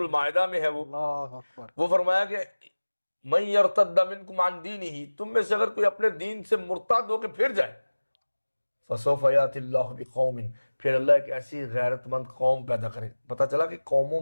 میں ہے وہ فرمایا کہ من یرتد منکم عن دینہ، تم میں سے اگر کوئی اپنے دین سے مرتد ہو کے پھر جائے، فسوف یأتی اللہ بقوم، پھر اللہ ایک ایسی غیرت مند قوم پیدا کرے. پتہ چلا کہ قوموں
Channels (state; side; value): inverted; both; correlation -1.00